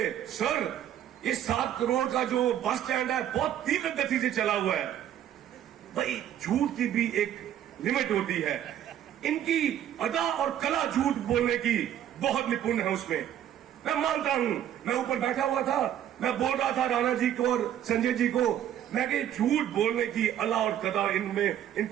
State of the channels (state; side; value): quieter; left; 10.8 dB